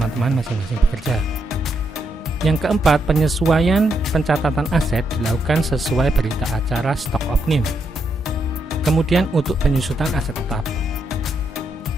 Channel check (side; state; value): both; normal; correlation 0.79